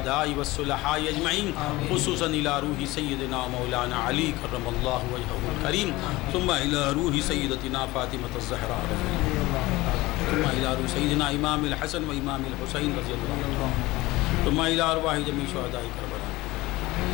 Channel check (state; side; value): quieter; right; 19.8 dB